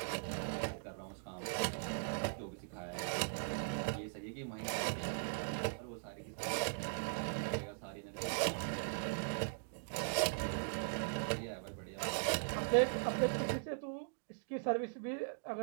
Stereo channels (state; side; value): silent; left; digital silence